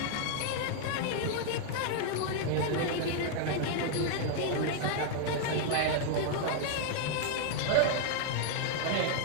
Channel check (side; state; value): both; different; correlation 0.00